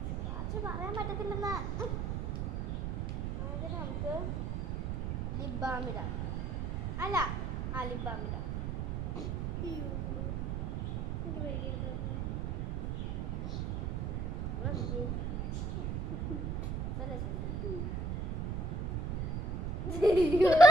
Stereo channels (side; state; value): right; noise; rumble, 1 dB below the sound